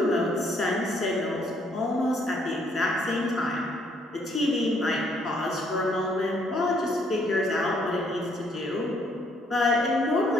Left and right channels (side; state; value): both; normal; correlation 0.68